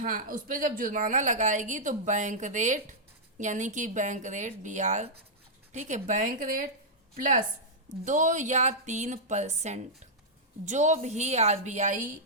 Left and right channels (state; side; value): normal; both; correlation -0.09